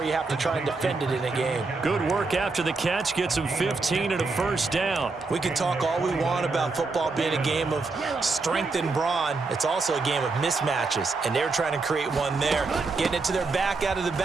you have to try and defend it in a game. Good work after the catch, gets him 15 and a first down. We can talk all we want about football being a game of strength and brawn. It's also a game of mismatches, and they're trying to create one there, getting it to their back out of the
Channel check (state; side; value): quieter; left; 3.9 dB